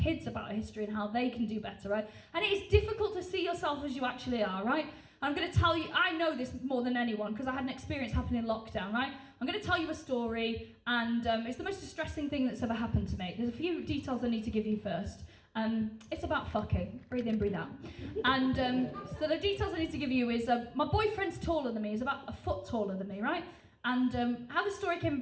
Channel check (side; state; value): both; identical; correlation 1.00